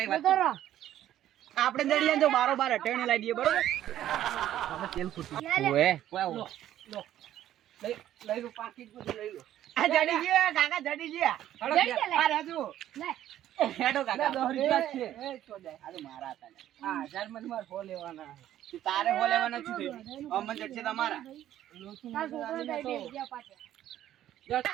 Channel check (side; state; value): left; quieter; 12.2 dB